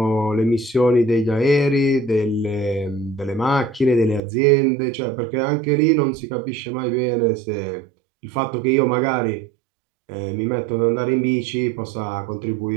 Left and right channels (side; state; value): left; drops out; at 4.2 s